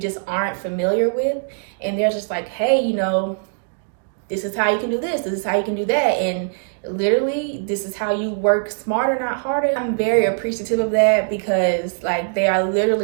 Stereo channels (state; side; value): silent; left; digital silence